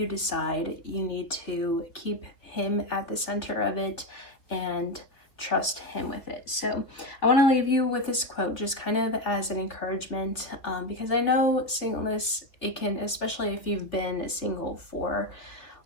decide, you need to keep Him at the center of it and trust him with it. So I want to leave you with this quote just kind of as an encouragement, because I know singleness, it can, especially if you've been single for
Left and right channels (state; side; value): late; right; 3.2 ms